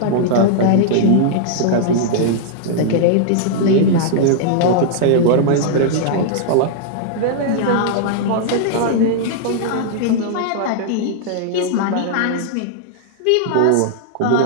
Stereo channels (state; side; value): different; both; correlation -0.01